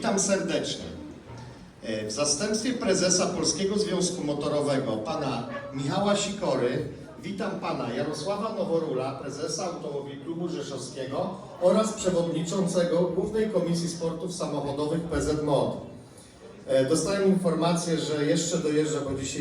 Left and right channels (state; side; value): identical; both; correlation 1.00